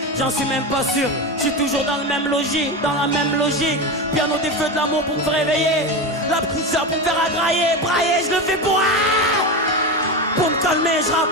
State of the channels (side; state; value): both; normal; correlation 0.20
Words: j'en suis même pas sûr. Je suis toujours dans le même logis, dans la même logique. Piano des feux de l'amour pour me réveiller, la petite sœur pour me faire agrailler, brailler, je le fais pour me calmer, je rappe,